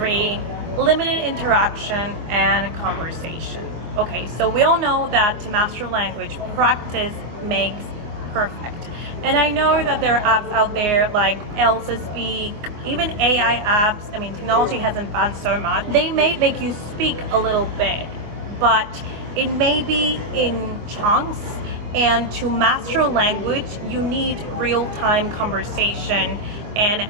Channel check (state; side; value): late; left; 24 ms